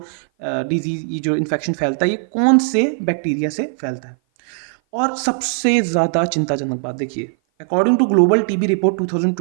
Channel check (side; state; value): left; silent; 57 dB below the other